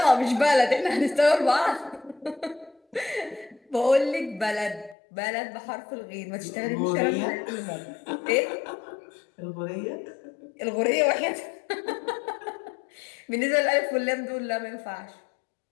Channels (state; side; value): drops out; right; at 5.0 s